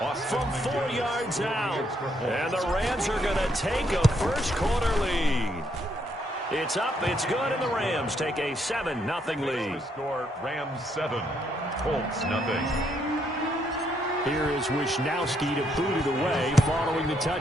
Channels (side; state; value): both; normal; correlation 0.73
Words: From 4 yards out. And the Rams are going to take a first-quarter lead. It's up, it's good, and the Rams take a 7-0 lead. Score Rams 7, Colts nothing. Here is Wisnowski to boot it away following the